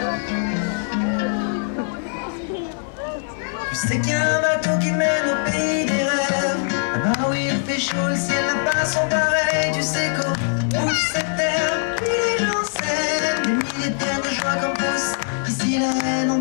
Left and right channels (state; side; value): silent; right; 62 dB below the other